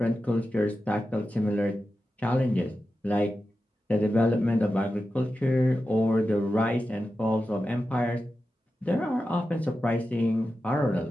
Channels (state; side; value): normal; both; correlation 0.92